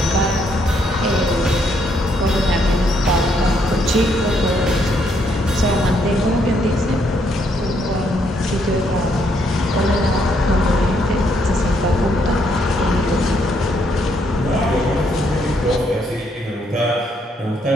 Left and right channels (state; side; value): normal; both; correlation 0.72